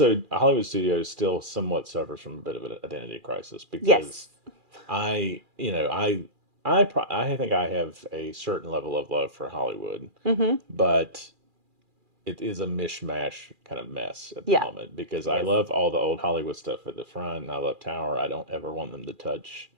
Hollywood Studios still somewhat suffers from a bit of an identity crisis because yes. I think I have a certain level of love for Hollywood, but it is a mishmash kind of mess at the moment because I love all the old Hollywood stuff at the front and I love Tower. I don't ever want them to touch.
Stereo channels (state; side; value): late; left; 2.4 ms